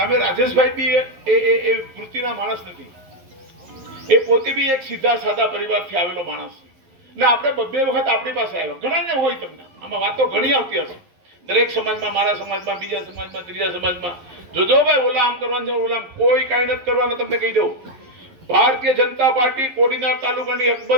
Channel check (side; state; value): left; late; 11 ms